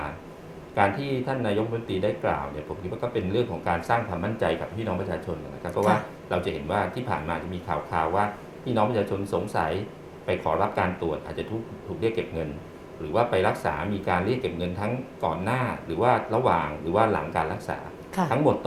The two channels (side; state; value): both; identical; correlation 1.00